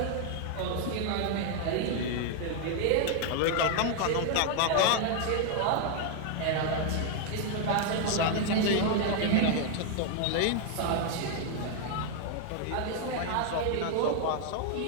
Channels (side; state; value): both; different; correlation 0.00